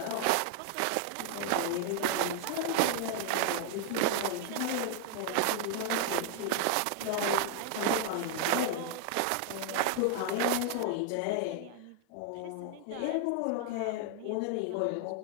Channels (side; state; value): both; different; correlation 0.00